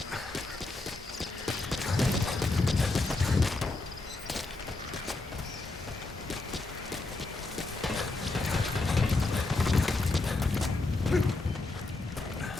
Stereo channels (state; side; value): quieter; right; 3.2 dB